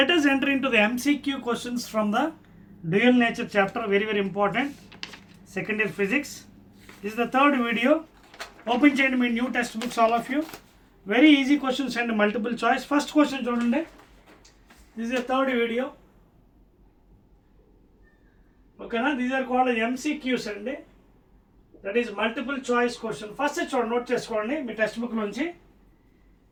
us enter into the MCQ questions from the dual nature chapter, very important, second year physics. This is the third video. Open చేయండి మీ new textbooks all of you. Very easy questions and multiple choice. First question చూడండి. This is the third video. Okay na, these are called MCQs అండి. That is multiple choice question. First చూడండి, నోట్ చేసుకోండి మీ text book నుంచి.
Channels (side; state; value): both; identical; correlation 1.00